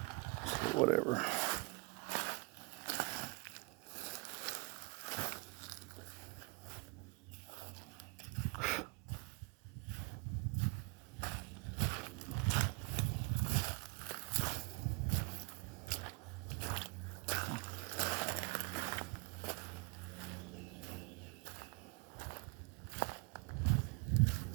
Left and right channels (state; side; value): quieter; left; 30.6 dB